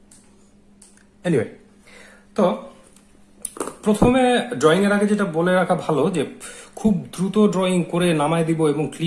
এনিওয়ে, তো প্রথমে ড্রয়িং এর আগে যেটা বলে রাখা ভালো যে খুব দ্রুত ড্রয়িং করে নামায় দিব এবং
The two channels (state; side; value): identical; both; correlation 1.00